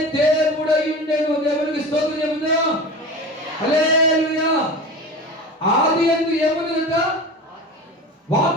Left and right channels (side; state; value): both; normal; correlation 0.32